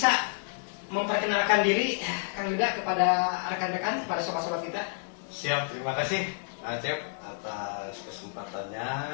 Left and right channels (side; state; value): right; silent; digital silence